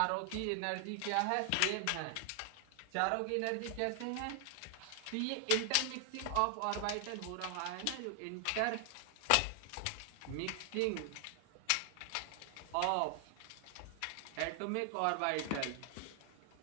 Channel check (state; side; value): different; both; correlation 0.00